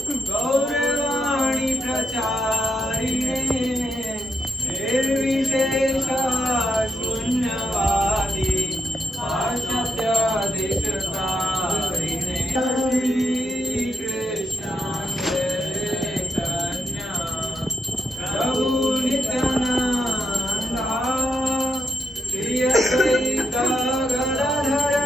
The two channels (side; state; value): both; normal; correlation 0.83